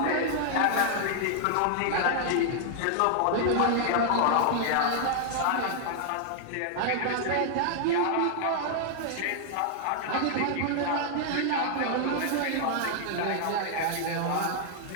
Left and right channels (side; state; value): both; different; correlation 0.00